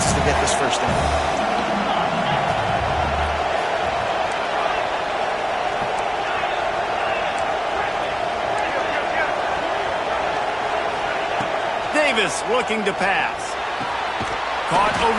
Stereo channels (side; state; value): both; identical; correlation 1.00